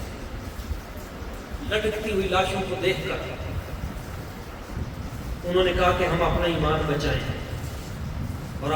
لٹکتی ہوئی لاشوں کو دیکھ کر انہوں نے کہا کہ ہم اپنا ایمان بچائیں, اور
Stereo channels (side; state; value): both; identical; correlation 1.00